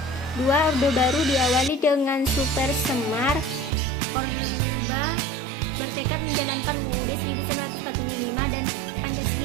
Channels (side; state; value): left; drops out; at 3.7 s